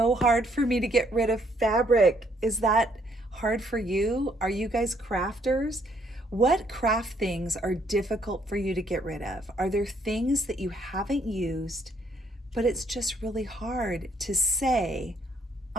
hard for me to get rid of fabric. Is that hard for you? Are you guys crafters? What craft things are difficult for you to get rid of? Are there things that you haven't used, but it's just really hard to say,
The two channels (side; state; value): both; normal; correlation 0.67